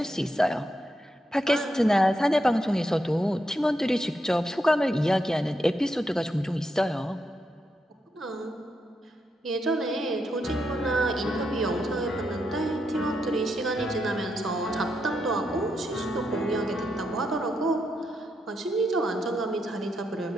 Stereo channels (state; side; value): normal; both; correlation 0.82